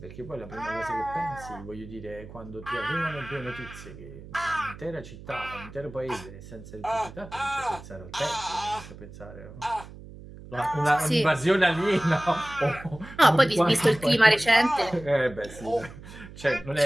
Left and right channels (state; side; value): noise; right; hum, 16 dB below the sound